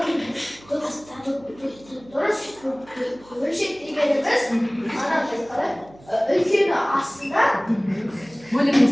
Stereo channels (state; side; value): noise; right; hum, 24 dB below the sound